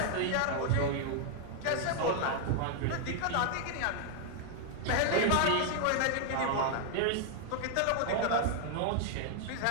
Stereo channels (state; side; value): different; both; correlation 0.00